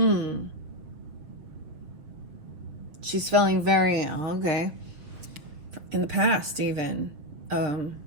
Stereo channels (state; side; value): late; left; 6.7 ms